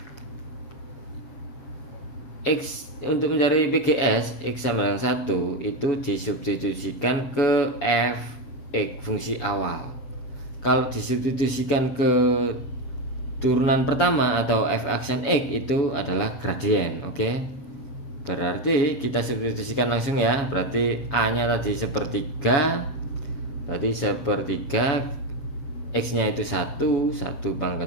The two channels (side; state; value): right; late; 7.1 ms